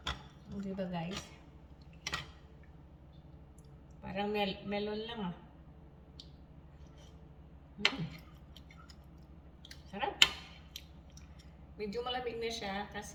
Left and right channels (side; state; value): both; identical; correlation 1.00